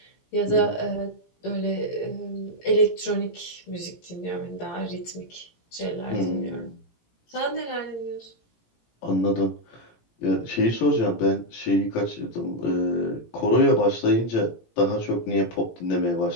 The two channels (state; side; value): late; right; 17 ms